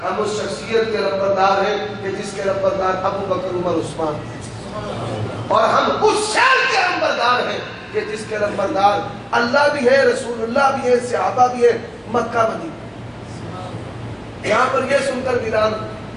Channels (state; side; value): identical; both; correlation 1.00